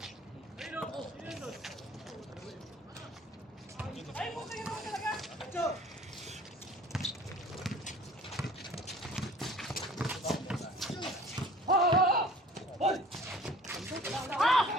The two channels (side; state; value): both; normal; correlation 0.48